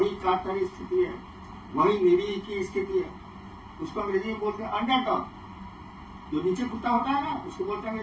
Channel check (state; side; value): identical; both; correlation 1.00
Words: कातरी स्थिति है, वही निरीह की स्थिति है। उसको अंग्रेजी में बोलते हैं अंडरडॉग। जो नीचे कुत्ता होता है ना, उसको बोलते हैं